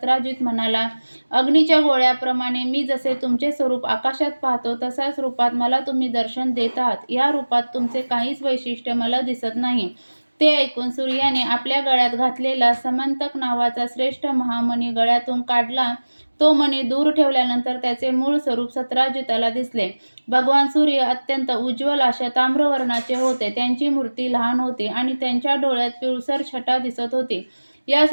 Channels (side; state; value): both; inverted; correlation -1.00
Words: म्हणाला, अग्नीच्या गोळ्याप्रमाणे मी जसे तुमचे स्वरूप आकाशात पाहतो तसाच रूपात मला तुम्ही दर्शन देत आहात. या रूपात तुमचे काहीच वैशिष्ट्य मला दिसत नाही. ते ऐकून सूर्याने आपल्या गळ्यात घातलेला समंतक नावाचा श्रेष्ठ महामणी गळ्यातून काढला. तो मणी दूर ठेवल्यानंतर त्याचे मूळ स्वरूप सत्राजिताला दिसले. भगवान सूर्य अत्यंत उज्ज्वल अशा ताम्रवर्णाचे होते. त्यांची मूर्ती लहान होती आणि त्यांच्या डोळ्यात पिळसर छटा दिसत होती. या